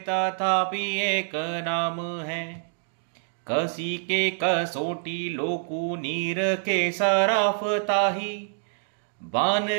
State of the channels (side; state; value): left; silent; digital silence